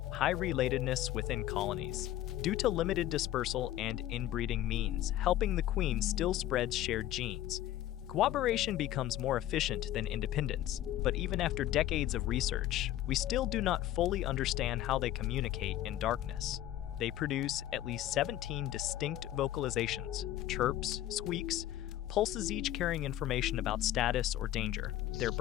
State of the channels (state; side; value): quieter; right; 13.4 dB